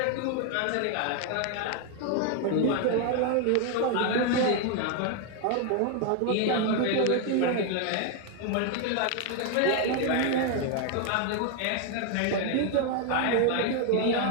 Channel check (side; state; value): both; different; correlation 0.01